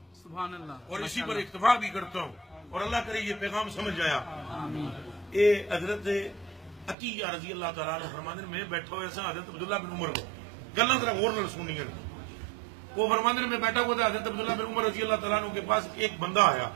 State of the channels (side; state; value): left; drops out; at 7.0 s